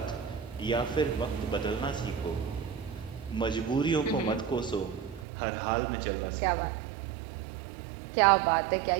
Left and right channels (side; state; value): left; drops out; at 5.2 s